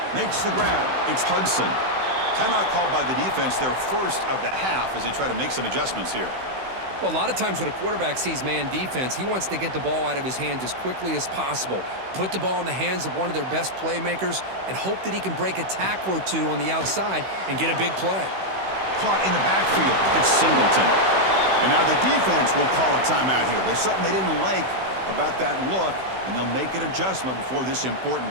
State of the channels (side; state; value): left; late; 16 ms